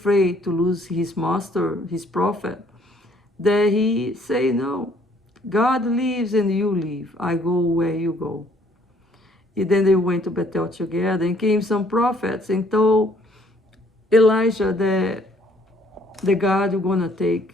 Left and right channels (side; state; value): both; normal; correlation 0.63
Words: to lose his master, his prophet, that he say, no, God lives and you live. I go where you go. And then they went to Bethel together, and came some prophets and told Elijah that the God is going to